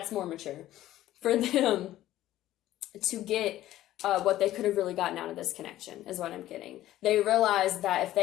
more mature. For them to get what they could have really gotten out of this connection is what I'm getting. They realized that if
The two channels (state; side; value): quieter; right; 14.1 dB